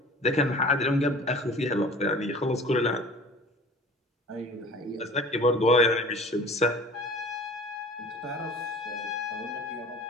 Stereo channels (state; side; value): normal; both; correlation 0.44